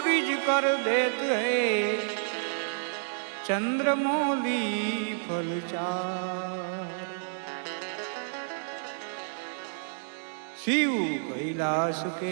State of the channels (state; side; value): silent; left; digital silence